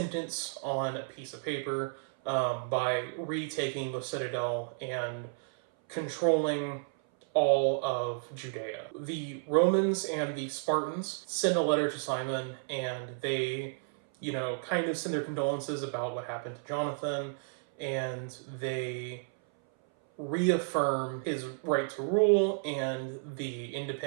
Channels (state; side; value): silent; left; 56 dB below the other